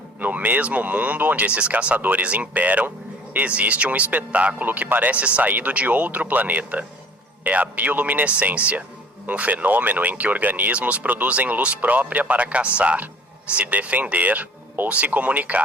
No mesmo mundo onde esses caçadores imperam, existe um espetáculo que parece saído de outro planeta. É a bioluminescência, um fenômeno em que organismos produzem luz própria para caçar, se defender ou se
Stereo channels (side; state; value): both; normal; correlation 0.50